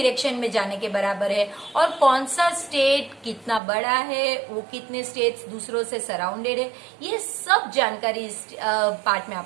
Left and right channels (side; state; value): left; drops out; at 3.6 s